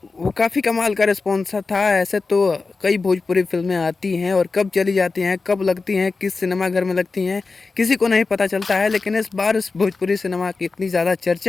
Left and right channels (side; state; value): right; quieter; 4.1 dB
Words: वो काफ़ी कमाल का रिस्पॉन्स था। ऐसे तो कई भोजपुरी फिल्में आती हैं और कब चली जाती हैं, कब लगती हैं, किस सिनेमा घर में लगती हैं, किसी को नहीं पता चलता है। लेकिन इस बार इस भोजपुरी सिनेमा की इतनी ज़्यादा